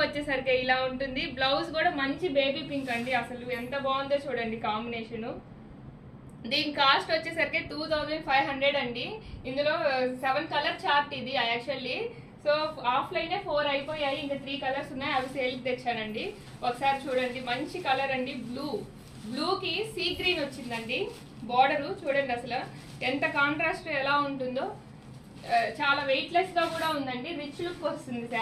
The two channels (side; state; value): both; identical; correlation 1.00